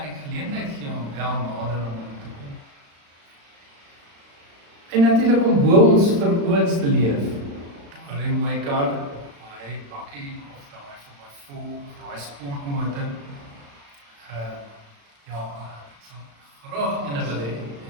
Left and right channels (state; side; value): late; left; 35 ms